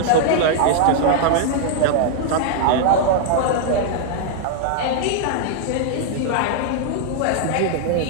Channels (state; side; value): different; both; correlation -0.01